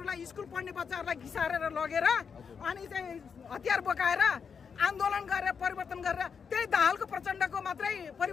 स्कुल पढ्ने बच्चाहरूलाई घिसारेर लगेर अनि चाहिँ हतियार बोकाएर आन्दोलन गरेर परिवर्तन गरेर त्यही दाहालको प्रचण्डको मात्रै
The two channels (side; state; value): right; quieter; 6.3 dB